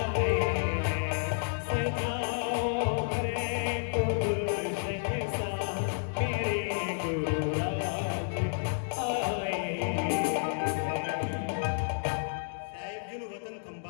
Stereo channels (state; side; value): silent; right; digital silence